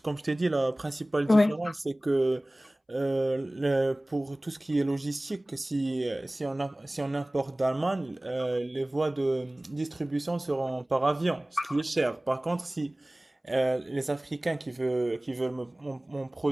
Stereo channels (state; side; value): normal; both; correlation 0.98